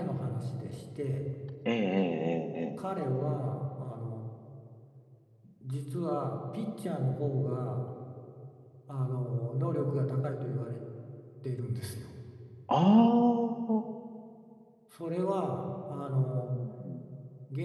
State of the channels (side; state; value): both; identical; correlation 1.00